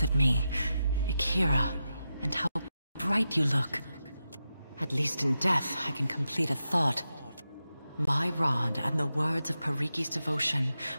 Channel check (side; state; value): both; inverted; correlation -0.90